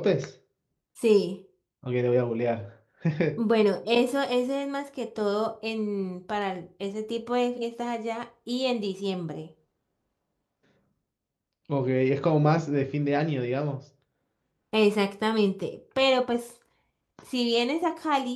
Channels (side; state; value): both; identical; correlation 1.00